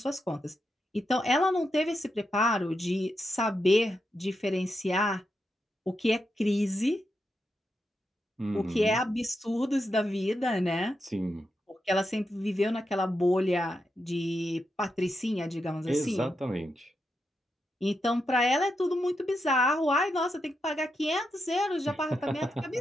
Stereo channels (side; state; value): both; normal; correlation 0.85